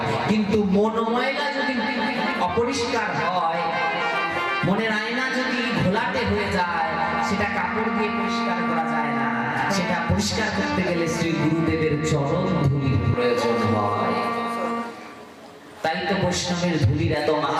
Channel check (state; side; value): identical; both; correlation 1.00